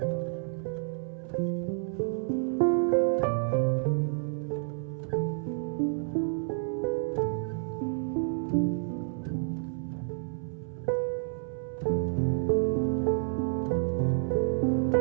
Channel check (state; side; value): silent; left; 58 dB below the other